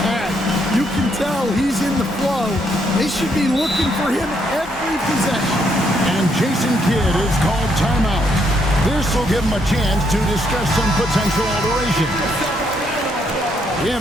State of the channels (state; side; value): normal; both; correlation 0.74